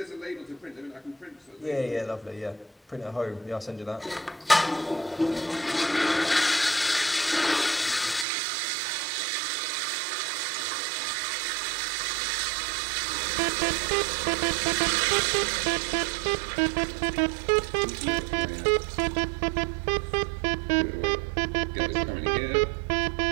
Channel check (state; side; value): drops out; left; at 8.2 s